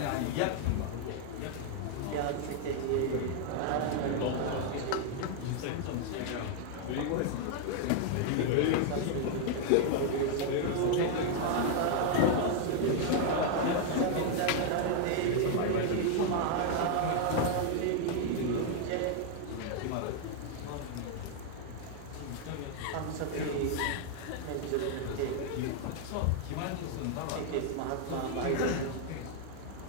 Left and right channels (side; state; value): both; different; correlation 0.00